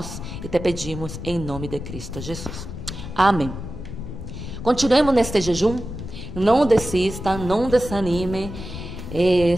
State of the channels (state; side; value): noise; left; rumble, 9 dB below the sound